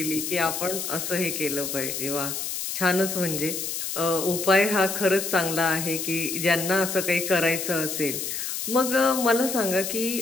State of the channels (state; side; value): noise; left; hiss, 4 dB below the sound